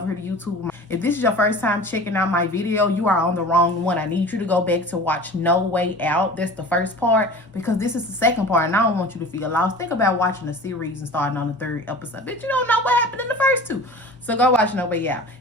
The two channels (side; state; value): both; normal; correlation 0.39